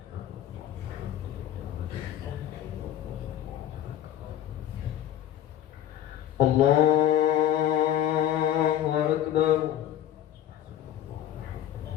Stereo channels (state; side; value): quieter; right; 11.5 dB